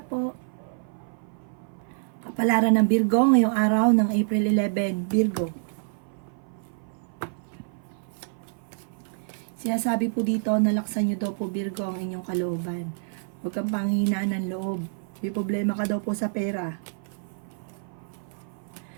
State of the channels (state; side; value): silent; left; 55 dB below the other